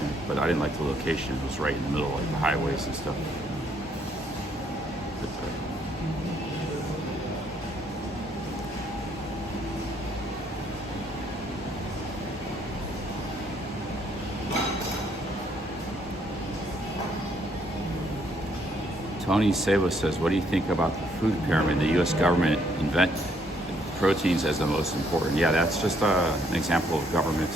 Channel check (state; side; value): normal; both; correlation 0.69